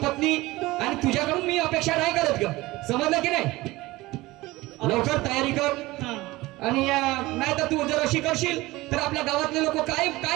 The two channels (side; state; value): left; quieter; 19.6 dB